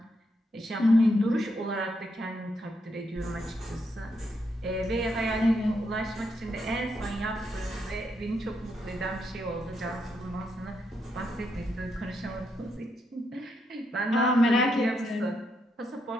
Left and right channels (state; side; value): normal; both; correlation 0.80